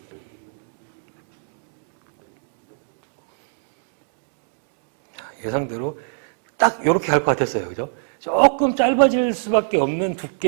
예상대로 딱 이렇게 갈 것 같았어요. 그죠? 조금 짧아질 수밖에 없는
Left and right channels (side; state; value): left; silent; digital silence